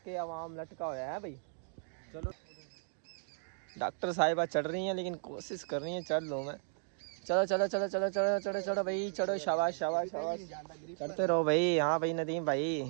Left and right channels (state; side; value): silent; left; digital silence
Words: आवाम लटका हुआ है भाई। चलो, डॉक्टर साहिबा चढ़ रही हैं लेकिन कोशिश कर रही हैं चढ़ लूँ मैं। चलो चलो चलो चलो चलो चलो चलो भाई, चढ़ो, शाबाश शाबाश शाबाश, चढ़ते रहो भाई। हाँ भाई नदीम